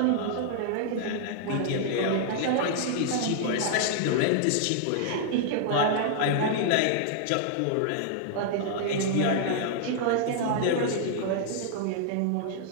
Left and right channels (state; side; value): different; both; correlation -0.01